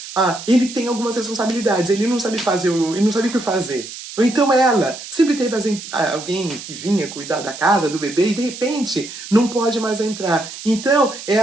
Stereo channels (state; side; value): noise; right; hiss, 12 dB below the sound